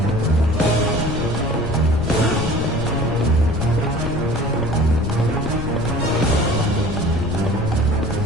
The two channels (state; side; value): noise; left; rumble, 5 dB below the sound